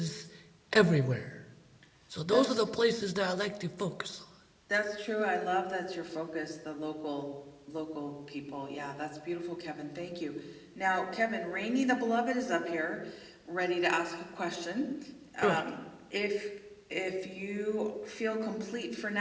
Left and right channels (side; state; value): both; identical; correlation 1.00